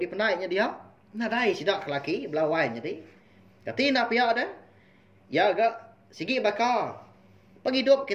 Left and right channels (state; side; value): identical; both; correlation 1.00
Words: penainya dia. Nadai sidak lelaki belawai jadi. Kati nak pihak dah. Ya agak sigi bakal. Penghidup